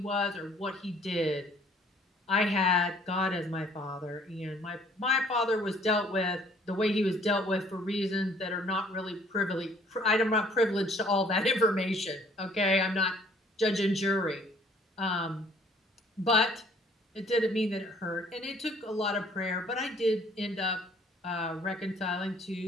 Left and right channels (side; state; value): both; normal; correlation 0.59